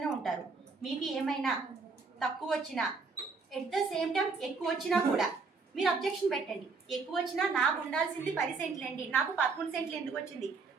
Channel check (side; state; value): left; quieter; 4.5 dB